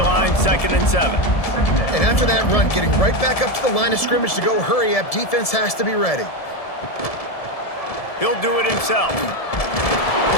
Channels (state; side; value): late; right; 1.7 ms